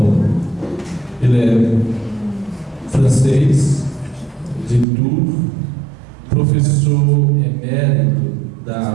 Ele é francês, de Tours, professor emérito da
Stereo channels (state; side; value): drops out; left; at 4.9 s